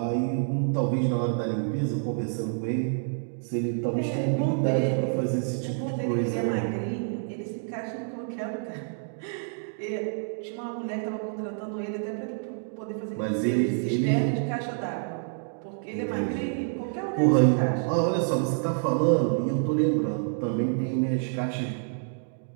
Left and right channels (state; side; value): silent; left; digital silence